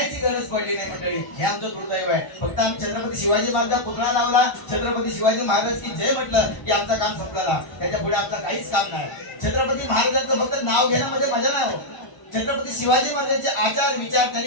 गरज पडली नाही मंडळी, हे आमचं दुर्दैव आहे. फक्त आम्ही छत्रपती शिवाजी महाराज पुतळा लावला, छत्रपती शिवाजी महाराज की जय म्हटलं की आमचं काम संपलं. त्याच्या पुढे आमचं काहीच काम नाही. छत्रपती महाराजांचं फक्त नाव घेण्यामध्ये मजा नाही हो. छत्रपती शिवाजी महाराजांचे आचार विचार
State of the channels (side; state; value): right; late; 1.0 ms